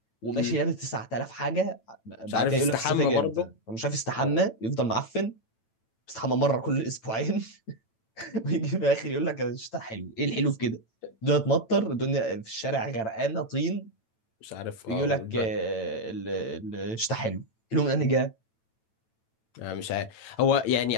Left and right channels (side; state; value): right; late; 9.0 ms